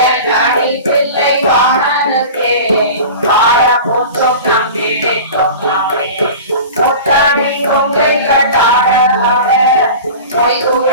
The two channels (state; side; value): inverted; both; correlation -0.35